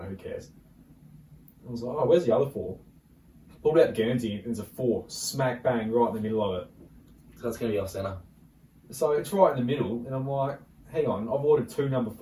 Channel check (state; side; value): identical; both; correlation 1.00